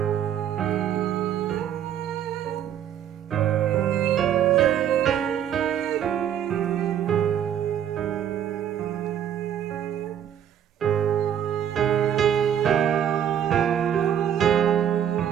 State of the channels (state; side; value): quieter; left; 9.7 dB